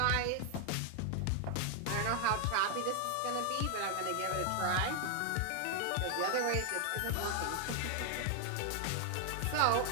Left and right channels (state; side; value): different; both; correlation 0.00